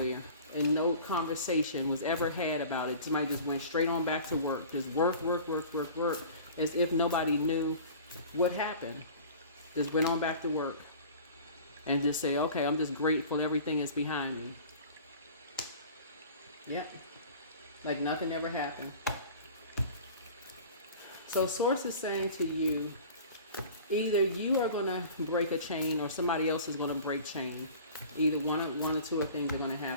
and no conversation was ever had about it. Somebody just went straight on back to work. Just work, as if nobody knew what happened. Just went on back to work. And just say, okay, I'm just grateful everything is behind me. Yep. Like nothing ever happened. So Source is saying to you, either you are going to break a chain or somebody else is going to break chain. Either one or two of things are going to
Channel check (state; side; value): inverted; both; correlation -0.42